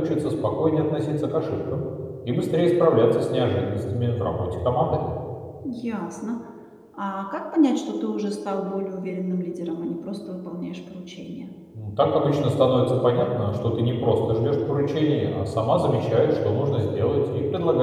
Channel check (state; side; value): identical; both; correlation 1.00